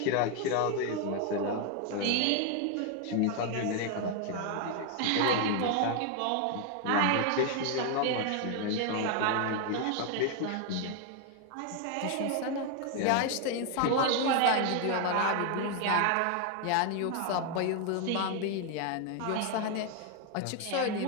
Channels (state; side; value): different; both; correlation 0.01